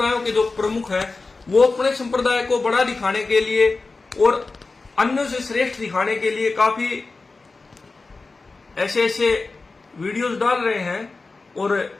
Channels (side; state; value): right; quieter; 3.8 dB